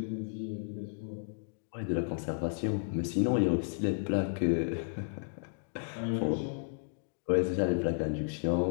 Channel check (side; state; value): right; silent; digital silence